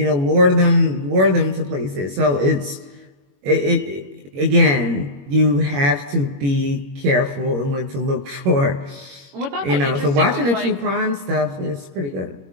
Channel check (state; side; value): late; left; 21 ms